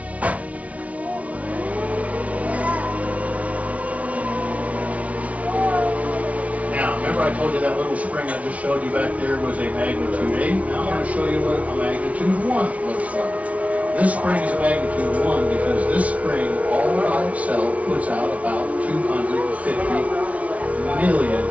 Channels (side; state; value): left; late; 0.067 ms